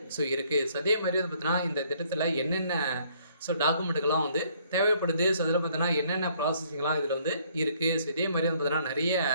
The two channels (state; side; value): inverted; both; correlation -0.64